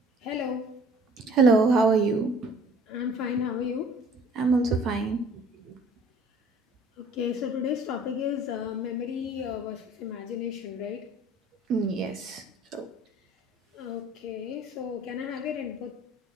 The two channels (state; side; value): normal; both; correlation 0.52